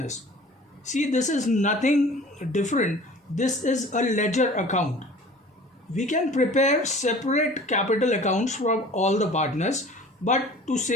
See, this is nothing different. This is a ledger account. We can prepare separate capital accounts from all the partners, but to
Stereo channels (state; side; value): normal; both; correlation 0.45